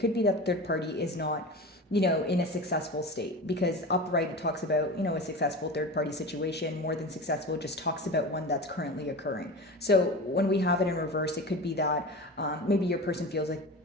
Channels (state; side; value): normal; both; correlation 0.30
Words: be that third party is not, in a successful state, because upright it talks about, a successful third-party situation. More than successful just talks about one that's currently occurring. So when we have it in reverse, it could be that maybe your person feels like,